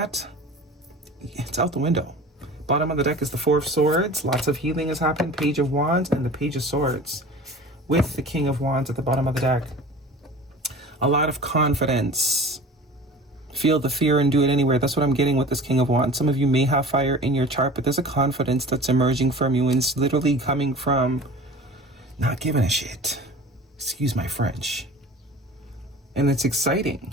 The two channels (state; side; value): normal; both; correlation 0.40